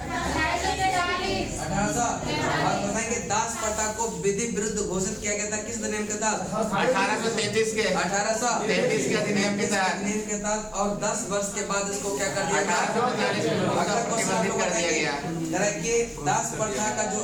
1800। और बताएंगे दास प्रथा को विधि विरुद्ध घोषित किया गया था किस अधिनियम के तहत? 1833 के 1833 के अधिनियम के तहत। और 10 वर्ष के बाद इसको क्या कर दिया गया? 1843 अगला क्वेश्चन कर दिया गया कि दास प्रथा का जो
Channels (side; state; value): both; identical; correlation 1.00